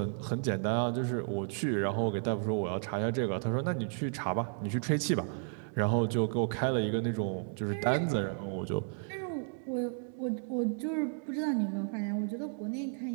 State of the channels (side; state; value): left; silent; 56 dB below the other